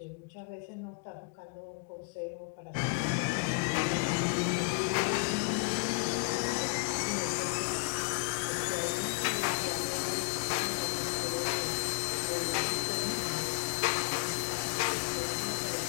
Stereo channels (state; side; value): quieter; right; 27.3 dB